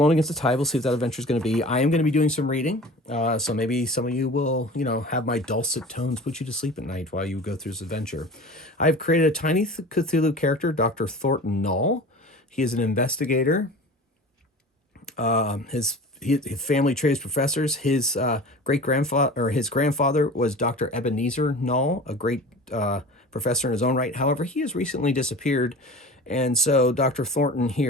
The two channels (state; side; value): normal; both; correlation 0.38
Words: Against the Tide. We'll see what that adventure is going to be. I am going to be doing some reading. So maybe some of you will, have my dulcet tones put you to sleep at night while you go through this adventure. I've created a Tiny Cthulhu character, Dr. Thornton Null. He is an investigator. His family tree is professors. His grandfather was Dr. Ebenezer Null, a great professor in his own right. However, he has recently disappeared. And so Dr. Thornton